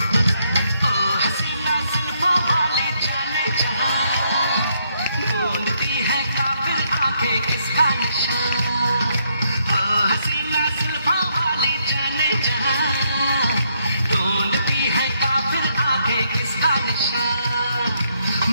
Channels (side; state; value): both; inverted; correlation -0.74